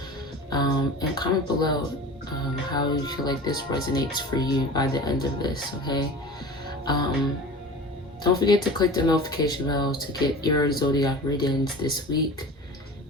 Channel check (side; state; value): both; normal; correlation 0.36